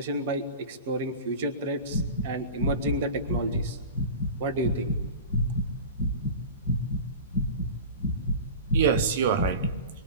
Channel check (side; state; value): both; inverted; correlation -0.33